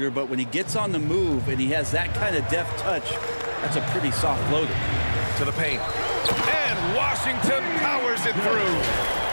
but when he gets on the move and he has that kind of deft touch, that's a pretty soft floater. To the paint. And Washington powers it through.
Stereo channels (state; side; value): inverted; both; correlation -1.00